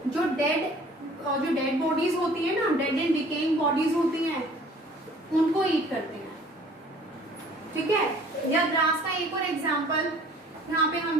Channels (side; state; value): both; normal; correlation 0.52